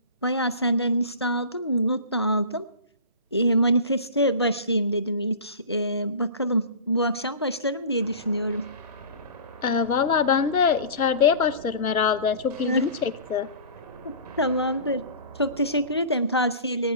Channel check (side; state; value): both; inverted; correlation -0.37